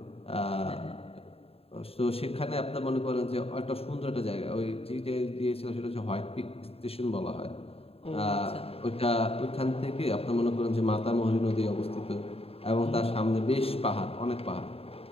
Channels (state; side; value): late; right; 0.28 ms